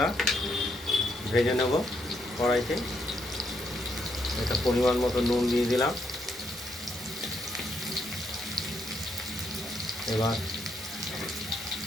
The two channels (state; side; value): normal; both; correlation 0.75